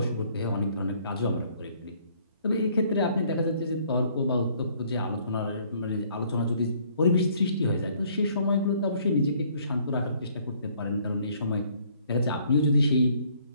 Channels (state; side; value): inverted; both; correlation -0.62